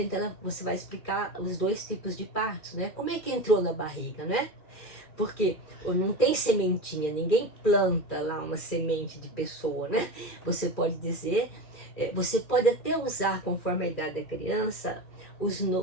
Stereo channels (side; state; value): right; late; 2.4 ms